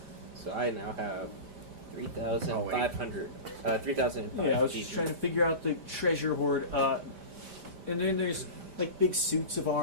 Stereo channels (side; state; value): left; late; 5.0 ms